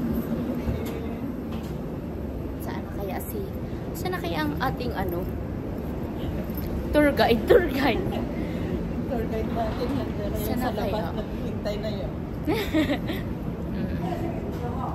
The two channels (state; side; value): identical; both; correlation 1.00